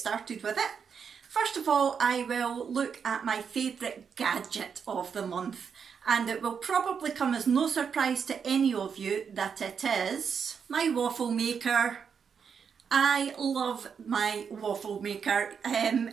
with it. First of all, I will look at my favourite gadget of the month, and it will probably come as no surprise to any of you that it is my waffle maker. I love my waffle maker.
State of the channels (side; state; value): left; quieter; 6.6 dB